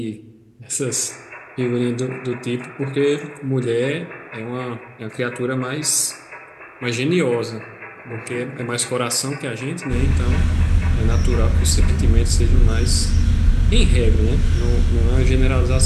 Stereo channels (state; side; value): identical; both; correlation 1.00